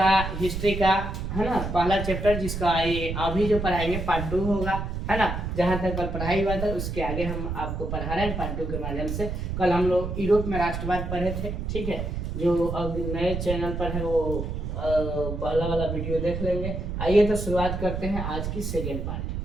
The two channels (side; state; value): right; noise; rumble, 4 dB below the sound